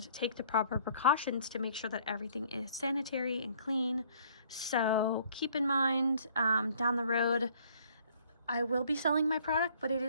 take the proper precautions to make sure that everything is sanitary and clean. So keep in mind, down the road, I will be selling my product, but it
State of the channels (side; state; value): both; inverted; correlation -0.59